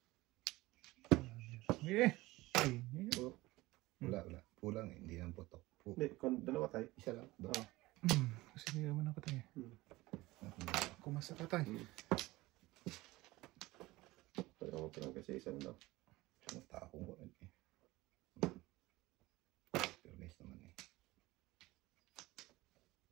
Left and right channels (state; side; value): quieter; left; 19.5 dB